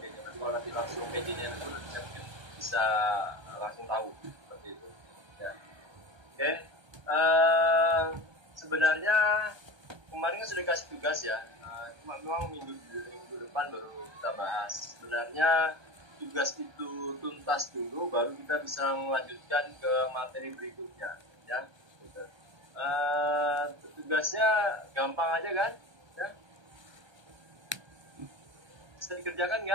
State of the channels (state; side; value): late; left; 1.2 ms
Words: Tapi kalau nanti langsung PJ-nya itu saya mungkin bisa langsung tahu seperti itu ya. Oke. Sebenarnya kemarin kan sudah kasih tugas ya, cuma memang minggu depan baru kita bahas. Sebenarnya tugas itu tuntas dulu, baru kita bisa melanjutkan ke materi berikutnya ya. Gitu. Tugasnya gampang aja kan ya, bisa dikerjakan